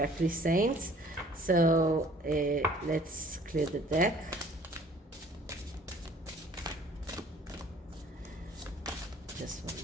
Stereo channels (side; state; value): both; normal; correlation 0.54